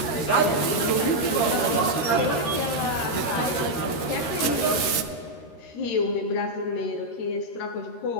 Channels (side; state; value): right; late; 13 ms